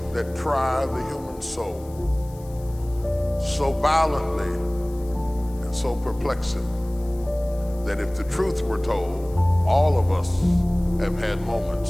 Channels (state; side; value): noise; left; hiss, 25 dB below the sound